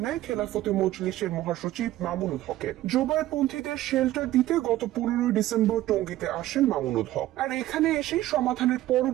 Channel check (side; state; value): left; quieter; 14.9 dB